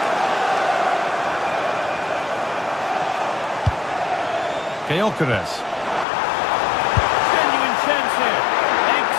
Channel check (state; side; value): drops out; right; at 6.1 s